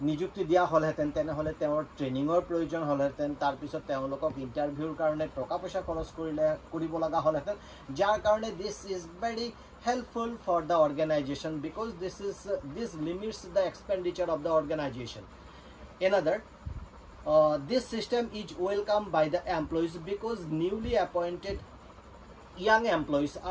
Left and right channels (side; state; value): both; identical; correlation 1.00